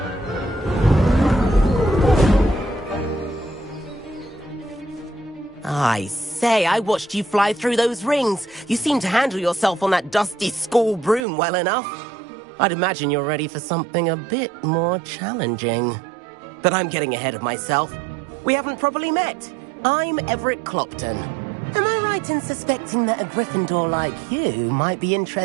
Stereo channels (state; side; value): drops out; left; at 11.2 s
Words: I say, I watched you fly through those rings. You seem to handle yourself on that dusty school broom well enough. I'd imagine you're ready for something a bit more challenging. But I'm getting ahead of myself. We haven't properly met. I'm Everett Clopton. Am I right in suspecting that a Gryffindor like you might be